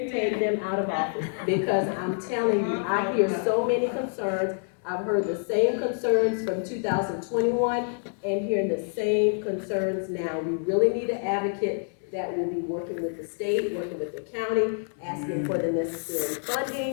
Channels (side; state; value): right; silent; 57 dB below the other